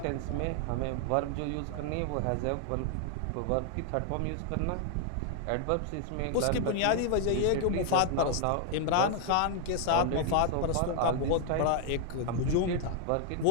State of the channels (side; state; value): both; different; correlation 0.00